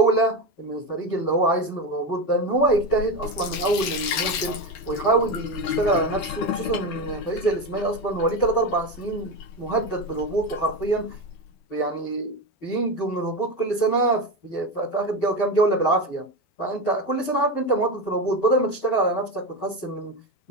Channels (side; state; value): right; late; 12 ms